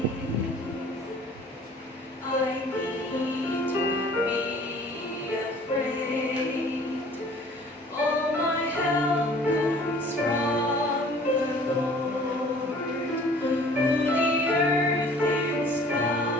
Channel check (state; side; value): normal; both; correlation 0.51